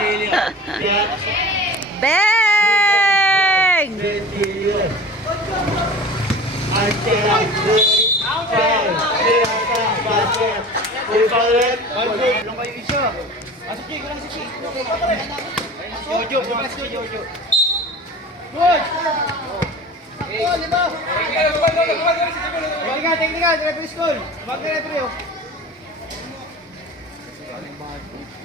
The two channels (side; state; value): both; normal; correlation 0.38